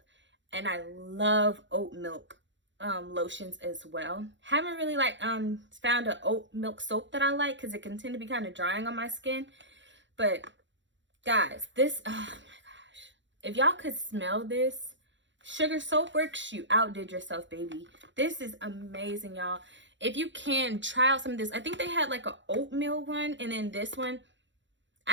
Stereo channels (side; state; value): left; late; 0.54 ms